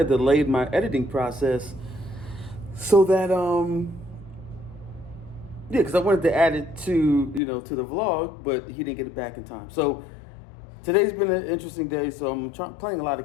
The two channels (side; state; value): right; drops out; at 7.4 s